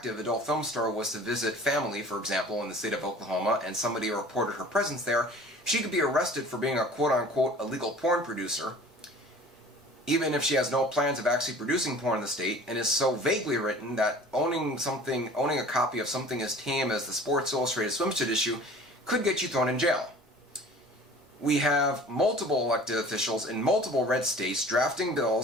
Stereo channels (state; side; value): normal; both; correlation 0.45